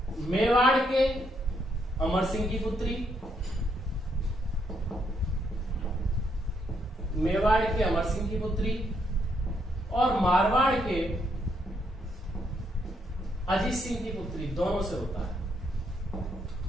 मेवाड़ के अमर सिंह की पुत्री, मेवाड़ के अमर सिंह की पुत्री और मारवाड़ के अजीत सिंह की पुत्री, दोनों से होता है।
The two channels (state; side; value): normal; both; correlation 0.75